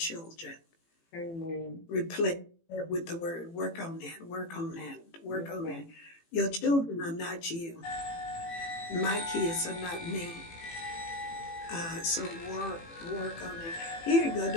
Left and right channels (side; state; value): right; late; 18 ms